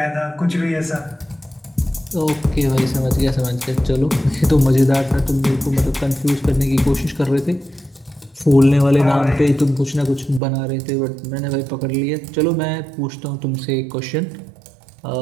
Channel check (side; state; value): left; drops out; at 10.4 s